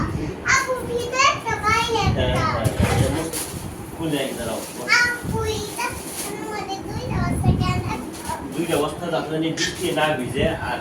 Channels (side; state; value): both; identical; correlation 1.00